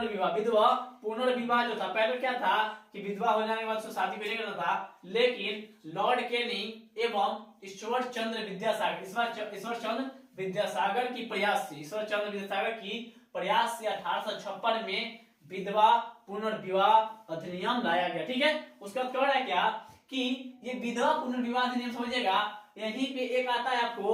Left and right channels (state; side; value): identical; both; correlation 1.00